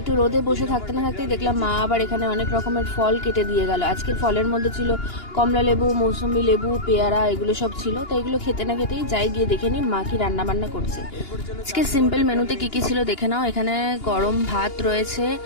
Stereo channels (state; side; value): late; right; 2.9 ms